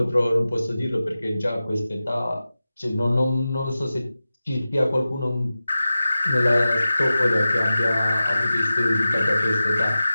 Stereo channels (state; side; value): inverted; both; correlation -0.94